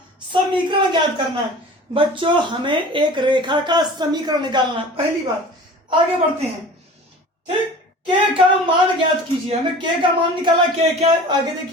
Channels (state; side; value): normal; both; correlation 0.41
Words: समीकरण ज्ञात करना है। बच्चों, हमें एक रेखा का समीकरण निकालना है। पहली बात, आगे बढ़ते हैं, ठीक। के का मान ज्ञात कीजिए, हमें के का मान निकाला, के क्या है आगे